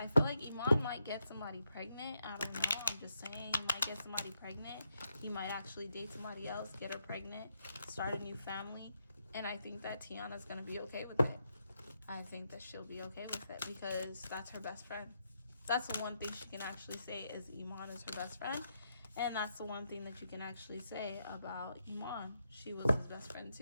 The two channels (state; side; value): inverted; both; correlation -0.81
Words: feel like Iman might get somebody pregnant. I don't know. I'm just saying, he might get somebody pregnant. He might actually date somebody else, get her pregnant, start a new family. And I think that Tiana's gonna be okay with it. I think that she'll be okay with it because that's her best friend. That's the one thing she can actually say is Iman is her best friend. And that's the one thing that you can actually say about Iman. She was his best friend